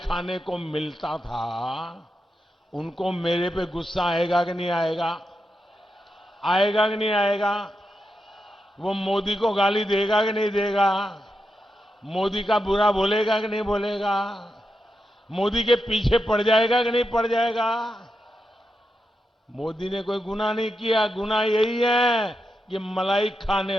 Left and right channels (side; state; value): both; normal; correlation 0.86